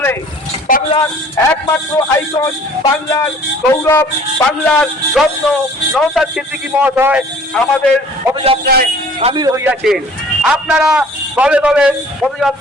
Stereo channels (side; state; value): both; normal; correlation 0.51